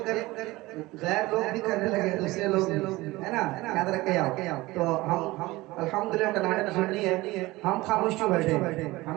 कर गैर लोग भी करने लगे, दूसरे लोग, है ना, याद रखे आओ। तो हम अल्हम्दुलिल्लाह टनाटन सुन्नी है, हम खामोश क्यों बैठे?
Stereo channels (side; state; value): left; quieter; 20.0 dB